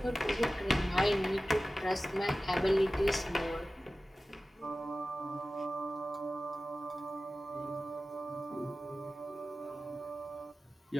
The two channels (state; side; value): normal; both; correlation 0.95